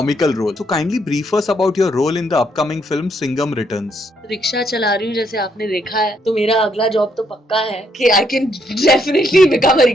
role. So kindly brief us about your role in the upcoming film Singham Returns. Rickshaw चला रही हूँ जैसे आपने देखा है, तो मेरा अगला जॉब तो पक्का है कि I can definitely become a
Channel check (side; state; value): both; normal; correlation 0.73